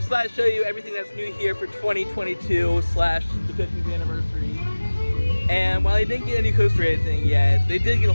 thought I'd show you everything that's new here for 2022 / the 50th anniversary. And while they didn't get a new coaster or anything yet, they did get a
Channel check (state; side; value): inverted; both; correlation -1.00